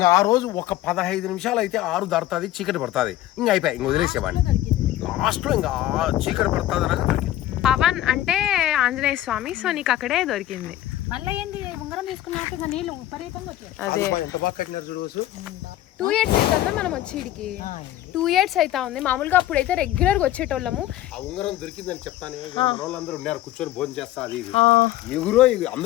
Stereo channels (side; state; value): right; quieter; 14.1 dB